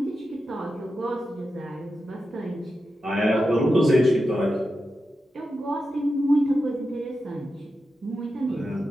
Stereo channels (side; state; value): both; normal; correlation 0.90